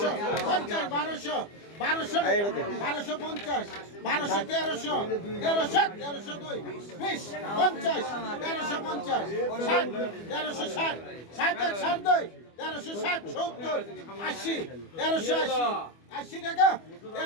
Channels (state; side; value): late; right; 25 ms